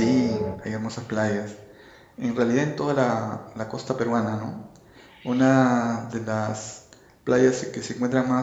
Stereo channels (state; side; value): identical; both; correlation 1.00